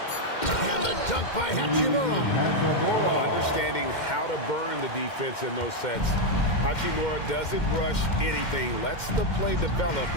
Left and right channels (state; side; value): late; right; 2.1 ms